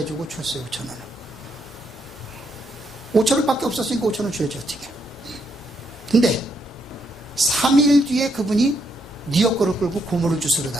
줬어요. 5,000원을 5,000원밖에 없었으니까 5,000원 줘야지 어떻게. 근데 3일 뒤에 그분이 네 역할을 끌고 고무를 주스러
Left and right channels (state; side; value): normal; both; correlation 0.76